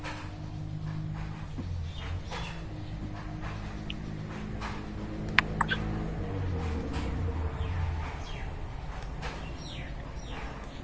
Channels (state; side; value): identical; both; correlation 1.00